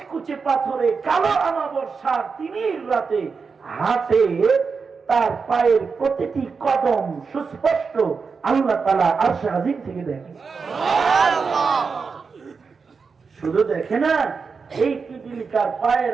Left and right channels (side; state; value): left; quieter; 5.2 dB